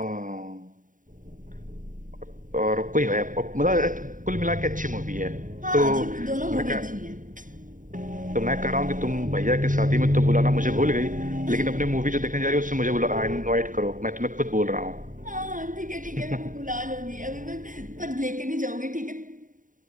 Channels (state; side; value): late; left; 0.38 ms